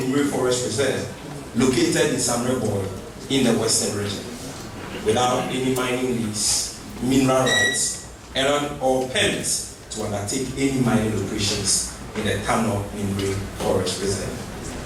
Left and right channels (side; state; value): both; identical; correlation 1.00